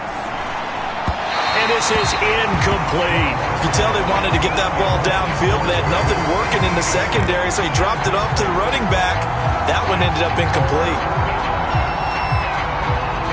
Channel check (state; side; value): identical; both; correlation 1.00